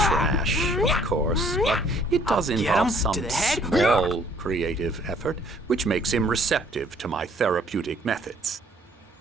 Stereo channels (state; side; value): normal; both; correlation 0.60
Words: of course, but it does Get involve him some to the head. small creative effort, which makes him receptive to my therapeutic methods.